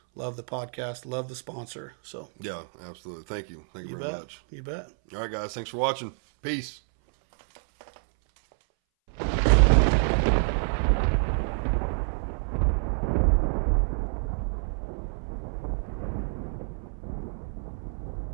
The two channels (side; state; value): left; silent; 59 dB below the other